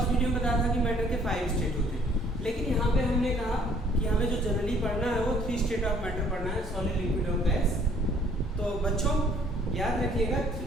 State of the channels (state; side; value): normal; both; correlation 0.60